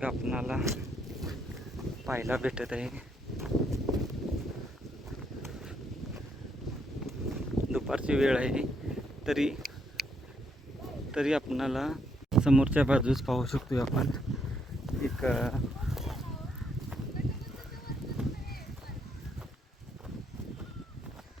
आपणाला पाहायला भेटत आहे. दुपारची वेळ आहे तरी आपणाला समोरच्या बाजूस पाहू शकतो आपण एक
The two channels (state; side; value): normal; both; correlation 0.74